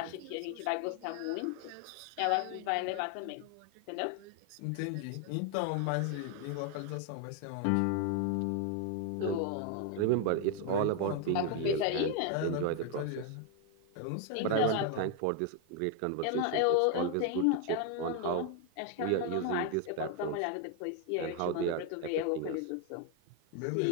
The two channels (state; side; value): different; both; correlation 0.01